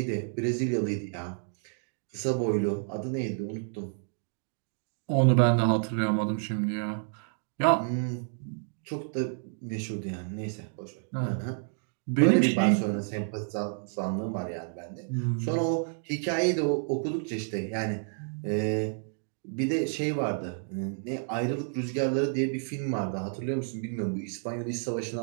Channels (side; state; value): left; silent; 58 dB below the other